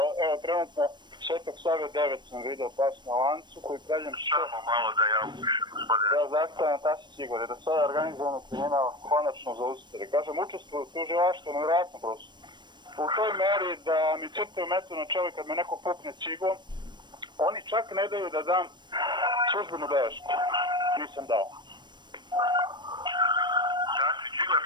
evo trenutno Svetog Save 9 sam video pas na lancu koji pravljam Samo malo da ja upišem, gospodine. Ja zastavljam Tasić Igor, da sada organizovano kriminal konačno zaustavi. Kažem, učestvuju u tužilaštvu, nevjerojatno prosto. U toj meri da mi crtaju metu na čelo kad me neko pukne cigom, oni čak ne daju da dam službenu belešku. Nisam dao. Tasić Igor?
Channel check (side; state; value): left; late; 0.22 ms